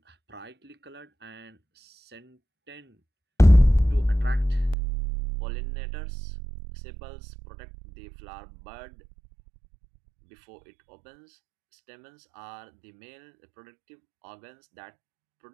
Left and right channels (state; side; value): drops out; left; at 4.8 s